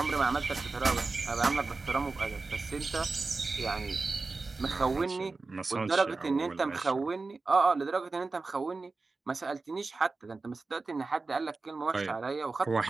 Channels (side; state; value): left; quieter; 3.8 dB